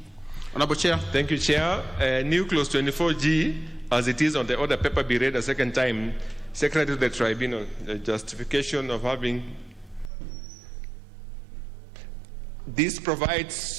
Honorable Chair. Thank you, Chair. New clause 24G, as it is on the order paper, be read a second time. Secretary to the Tribunal, the justification of having. This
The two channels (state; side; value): drops out; left; at 10.1 s